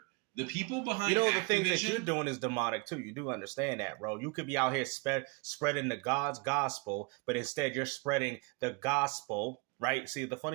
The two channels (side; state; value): left; quieter; 30.3 dB